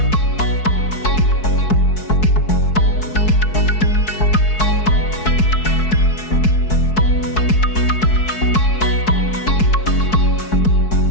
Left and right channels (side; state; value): right; late; 4.6 ms